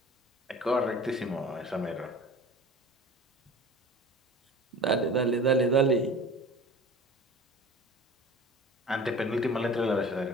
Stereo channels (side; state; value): both; normal; correlation 0.40